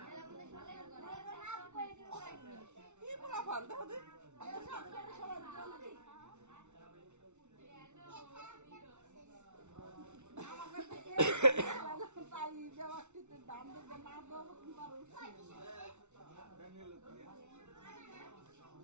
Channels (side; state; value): left; late; 0.83 ms